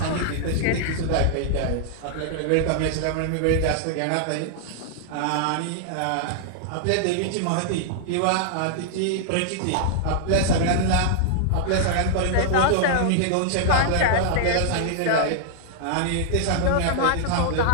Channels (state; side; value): different; both; correlation -0.01